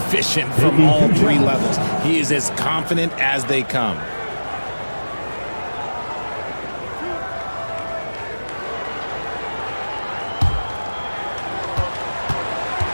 from all 3 levels. He is as confident as they come.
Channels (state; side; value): inverted; both; correlation -1.00